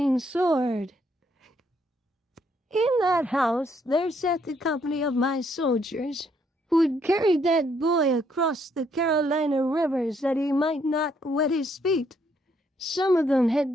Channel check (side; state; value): both; normal; correlation 0.71